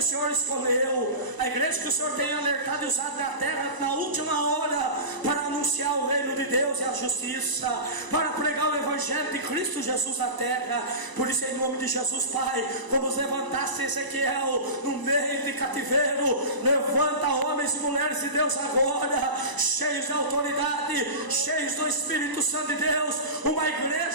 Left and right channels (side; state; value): left; late; 1.0 ms